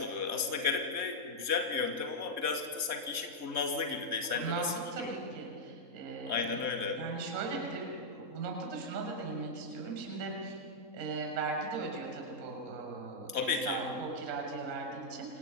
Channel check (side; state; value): left; late; 3.7 ms